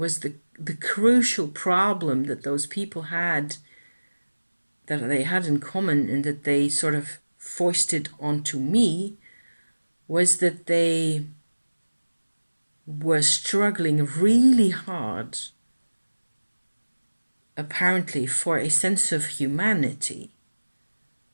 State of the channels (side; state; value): both; inverted; correlation -1.00